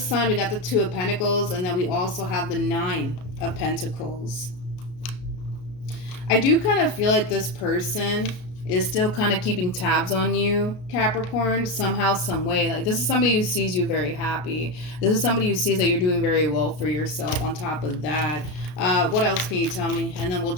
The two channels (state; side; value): late; right; 33 ms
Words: we got the Two of Pentacles, and then we also have the Nine of Pentacles. I do kind of feel like this person is still kind of keeping tabs on you, Capricorn, somehow, some way. Like, this is somebody who sees you very happy. This is somebody who sees that you're doing very well for yourself on top of that. What else can you tell me? And then we'll